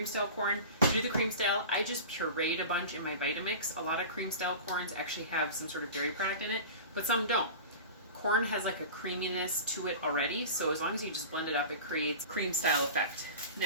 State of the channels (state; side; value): inverted; both; correlation -0.34